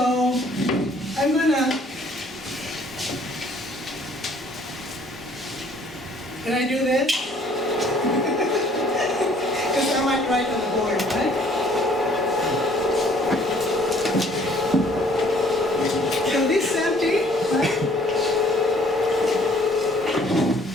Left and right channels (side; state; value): both; normal; correlation 0.59